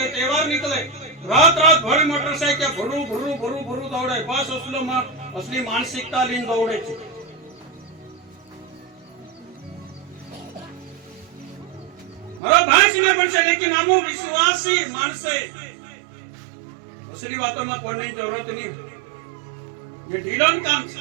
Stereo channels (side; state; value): left; drops out; at 12.4 s